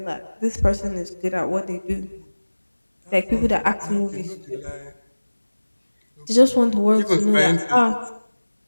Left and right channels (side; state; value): both; inverted; correlation -1.00